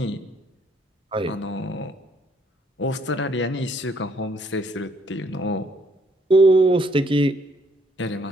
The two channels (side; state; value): both; normal; correlation 0.67